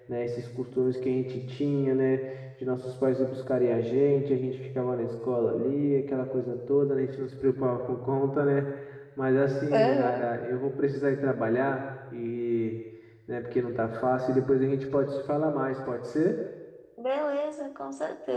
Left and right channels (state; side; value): identical; both; correlation 1.00